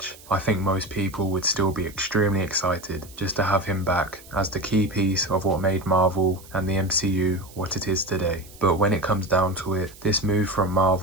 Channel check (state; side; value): noise; right; hiss, 21 dB below the sound